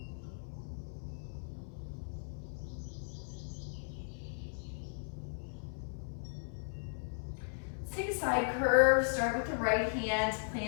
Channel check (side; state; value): right; silent; 53 dB below the other